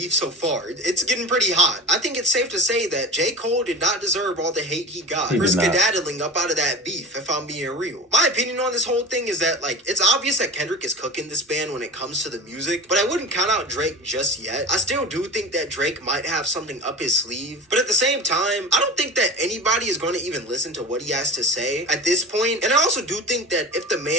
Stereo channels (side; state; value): both; normal; correlation 0.34